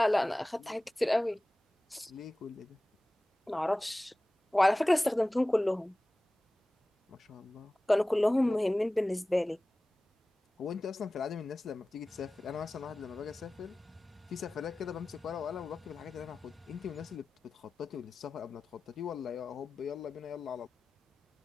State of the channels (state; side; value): normal; both; correlation 0.97